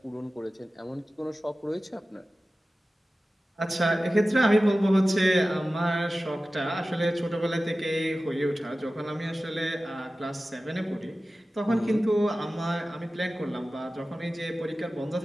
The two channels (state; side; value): normal; both; correlation 0.96